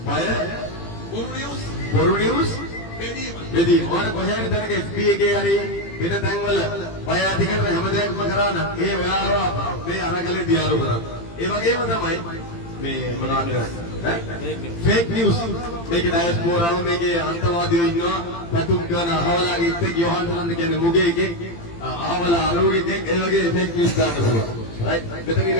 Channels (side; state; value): right; late; 18 ms